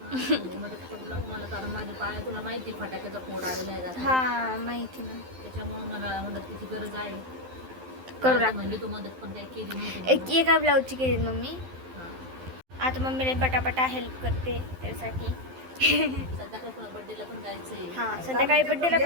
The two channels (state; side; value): late; left; 12 ms